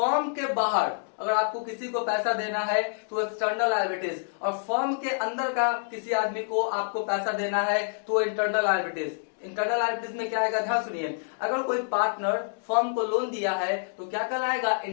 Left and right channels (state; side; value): silent; right; digital silence